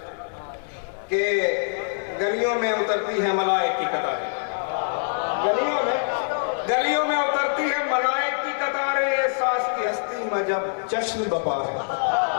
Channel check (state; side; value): silent; right; digital silence